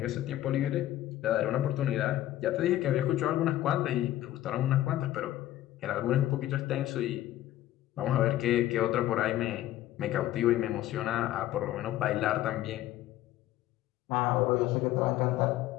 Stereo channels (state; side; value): quieter; right; 14.0 dB